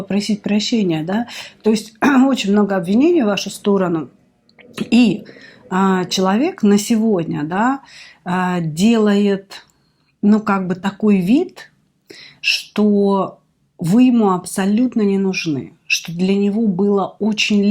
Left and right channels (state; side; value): identical; both; correlation 1.00